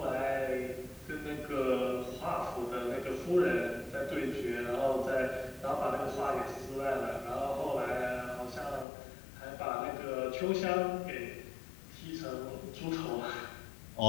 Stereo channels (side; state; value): right; drops out; at 8.8 s